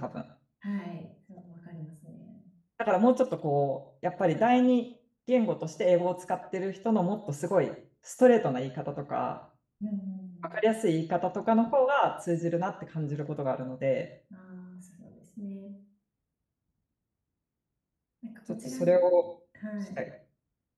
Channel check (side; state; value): both; identical; correlation 1.00